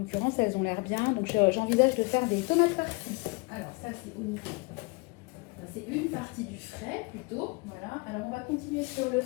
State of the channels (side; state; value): right; quieter; 28.7 dB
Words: elles ont l'air bien, donc j'envisage de faire des tomates farcies. Alors ça, c'est une partie du frais plutôt. Voilà. Alors on va continuer sur le